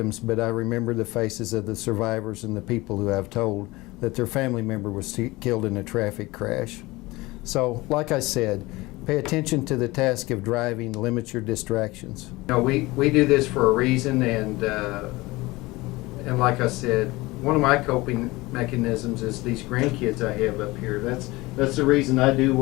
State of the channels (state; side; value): quieter; right; 21.1 dB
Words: but I remember the faces of the survivors and the people who have told that their family member was killed in a traffic crash. So, like I said, pay attention to the task of driving, limit your distractions. You know, we do this for a reason, and like I said, one of my coping mechanisms is these grandkids I have up here. That's the reason I do